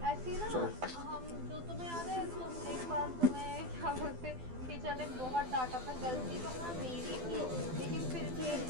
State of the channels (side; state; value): left; late; 12 ms